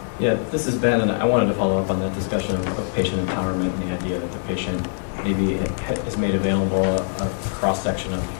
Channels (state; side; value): silent; right; 64 dB below the other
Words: Yeah, this is Ben, and I wanted to follow up on that discussion of patient empowerment and the idea that the patient maybe is made available a cross-section of